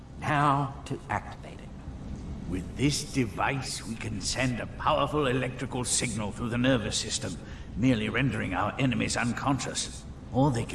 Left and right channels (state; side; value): identical; both; correlation 1.00